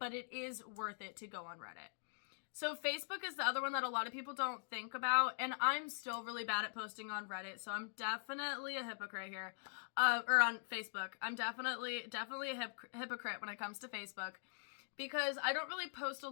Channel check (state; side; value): silent; right; digital silence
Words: it is worth it to go on Reddit. So Facebook is the other one that a lot of people don't think about, and I'm still really bad at posting on Reddit, so I'm definitely a hypocrite here. Or on Facebook. I'm definitely a hypocrite when it comes to Facebook, because I don't really post a